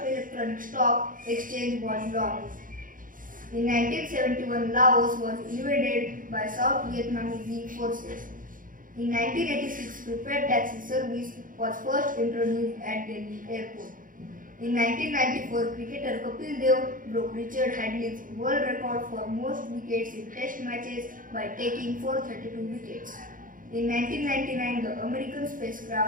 electronic stock exchange, was launched. In 1971, Laos was invaded by South Vietnamese forces. In 1986, prepaid taxi service was first introduced at Delhi airport. In 1994, cricketer Kapil Dev broke Richard Hadley's world record for most wickets in test matches by taking 432 wickets. In 1999, the American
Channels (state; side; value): late; left; 0.39 ms